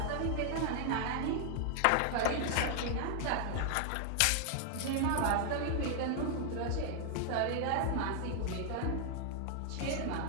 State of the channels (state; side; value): different; both; correlation 0.00